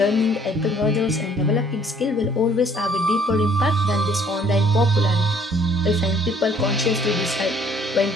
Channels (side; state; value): both; normal; correlation 0.60